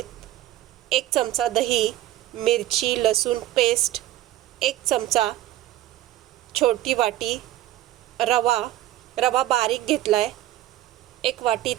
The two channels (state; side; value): quieter; left; 14.4 dB